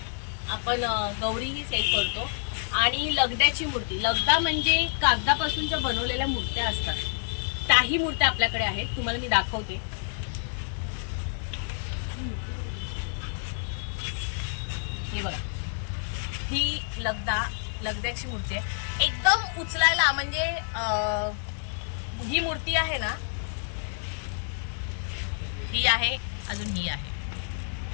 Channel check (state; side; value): silent; right; digital silence